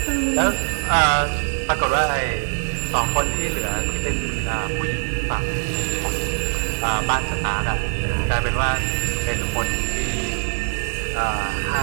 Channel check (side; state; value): left; silent; 58 dB below the other